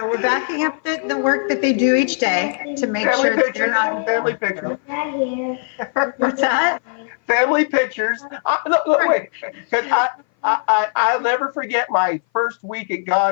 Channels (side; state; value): right; silent; 60 dB below the other